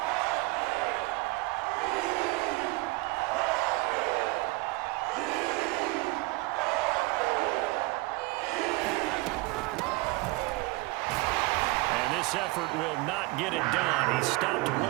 This effort will not get it done. He stopped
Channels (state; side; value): quieter; left; 23.3 dB